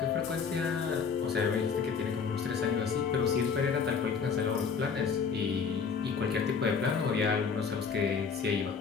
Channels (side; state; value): right; quieter; 5.9 dB